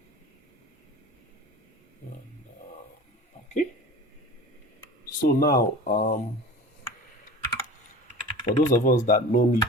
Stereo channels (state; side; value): normal; both; correlation 0.38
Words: Okay. So now, for those of us that know me